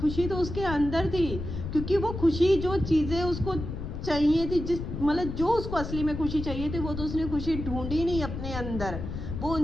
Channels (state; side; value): noise; left; rumble, 6 dB below the sound